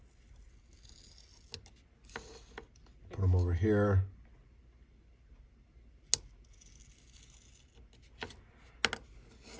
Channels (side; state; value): both; identical; correlation 1.00